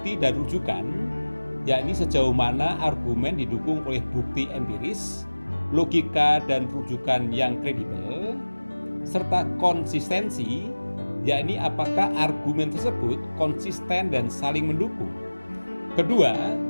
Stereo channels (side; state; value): both; inverted; correlation -1.00